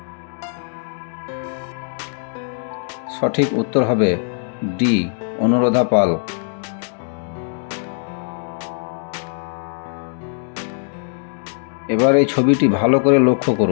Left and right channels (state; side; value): silent; right; 59 dB below the other